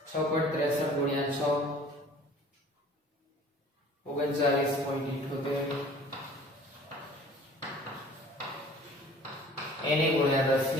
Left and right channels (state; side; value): normal; both; correlation 0.48